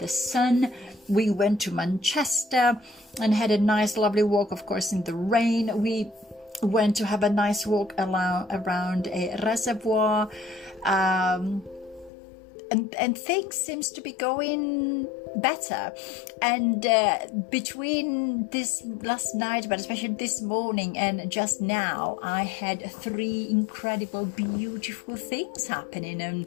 sun. We went to Manchester and had a nice lovely walk, of course, in the rain. We went to have a nice walk around a reservoir, and things seems to be going better. And between this last night, but especially this morning and just now, I had 3 incredible, beautiful things happening,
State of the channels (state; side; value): drops out; right; at 12.1 s